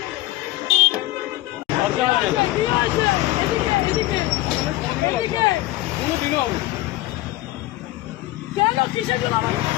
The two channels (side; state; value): right; quieter; 17.4 dB